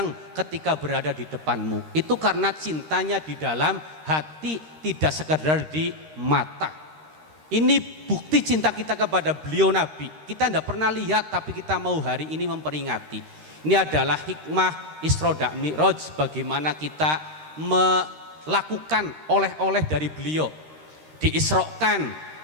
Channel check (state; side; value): late; left; 13 ms